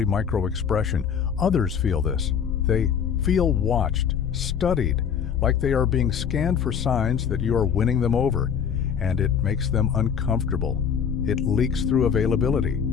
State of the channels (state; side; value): quieter; right; 7.5 dB